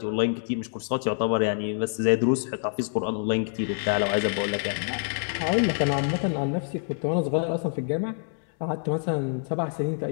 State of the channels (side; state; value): right; silent; digital silence